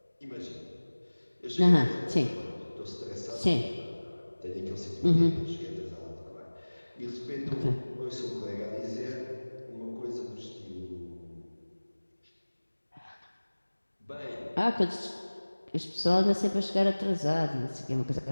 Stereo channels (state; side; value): inverted; both; correlation -1.00